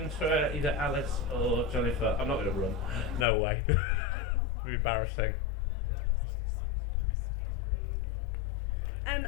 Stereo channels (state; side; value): drops out; right; at 3.2 s